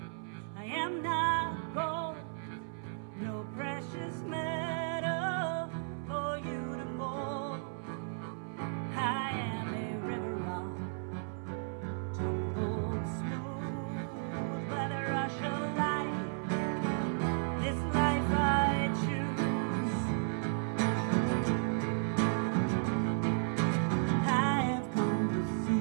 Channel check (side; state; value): left; silent; 55 dB below the other